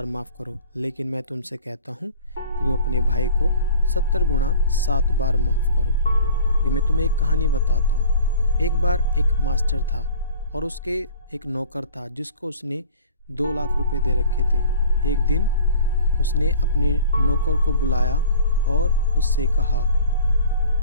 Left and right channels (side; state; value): both; inverted; correlation -0.47